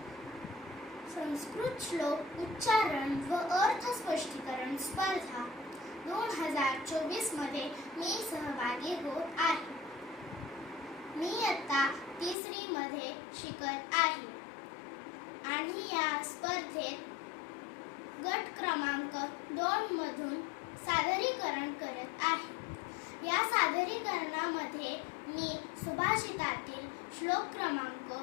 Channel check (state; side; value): drops out; right; at 12.4 s